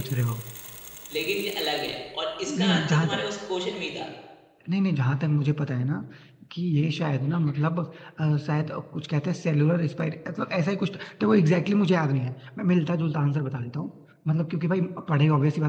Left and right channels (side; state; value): both; identical; correlation 1.00